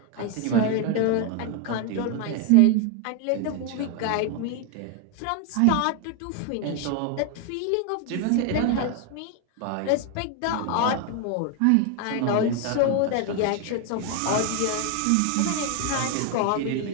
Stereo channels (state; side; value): different; both; correlation 0.01